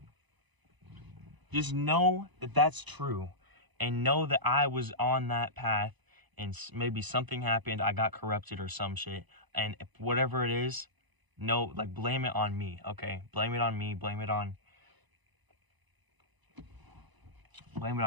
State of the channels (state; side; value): late; left; 1.0 ms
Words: Just know that that's true, and know that I was on that path, and maybe something happened. I got corrupted or some shit, and whatever it is, no, like blame it on me, okay? Blame it on me. Blame it on